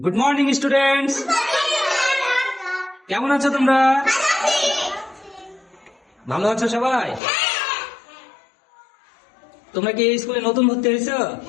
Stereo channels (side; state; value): right; drops out; at 7.2 s